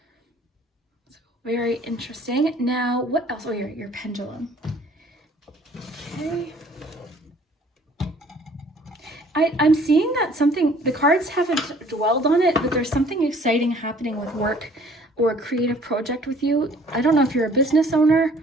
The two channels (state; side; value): normal; both; correlation 0.55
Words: So very interesting. Now, what else? Oh, your pendulum. Okay. I'm seeing that the cards haven't dwelled on it, but there's something exciting happening with work or a creative project with you. I don't know if you're a business owner.